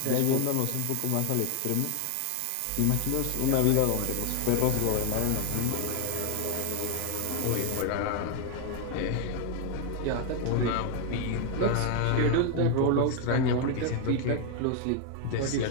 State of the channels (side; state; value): both; different; correlation 0.01